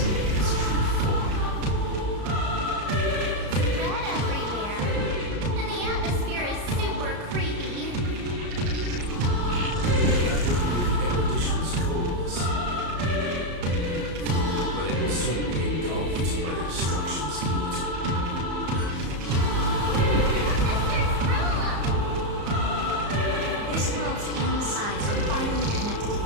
its true form. Red everywhere, and the atmosphere is super creepy. That would be the erudition's coldness. But it will soon be engulfed by the destruction's heat. This world's insides are finally connected to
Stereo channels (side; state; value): left; late; 34 ms